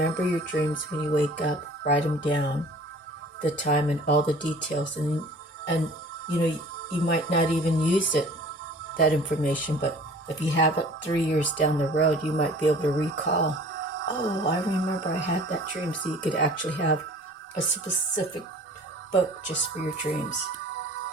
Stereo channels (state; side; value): normal; both; correlation 0.48